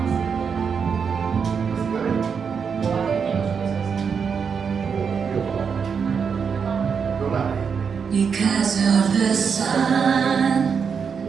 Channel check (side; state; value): left; quieter; 6.3 dB